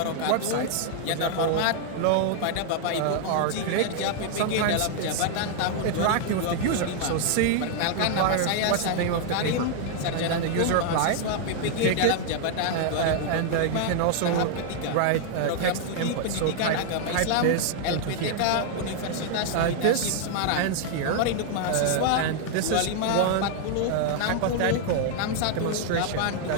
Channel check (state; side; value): different; both; correlation 0.00